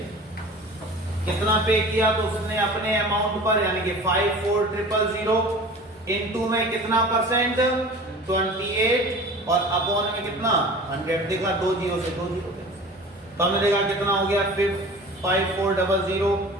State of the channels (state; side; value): normal; both; correlation 0.40